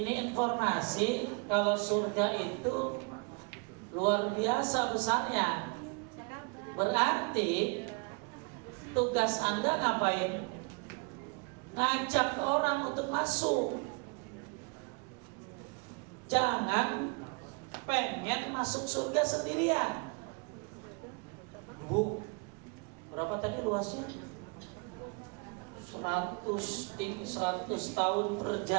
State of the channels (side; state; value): left; quieter; 32.3 dB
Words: informasi kalau surga itu luar biasa besarnya. Berarti tugas Anda ngapain? Ngajak orang untuk masuk. Jangan pengen masuk surga sendirian. Bu, berapa tadi luasnya? 100 tahun